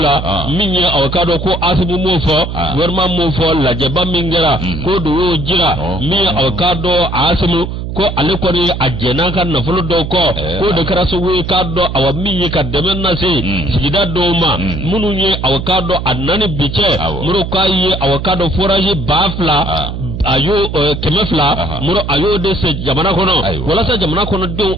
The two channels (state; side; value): noise; right; hum, 6 dB below the sound